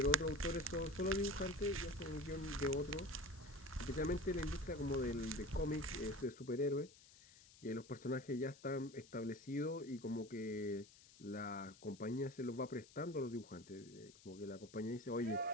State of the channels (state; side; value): noise; left; hiss, 22 dB below the sound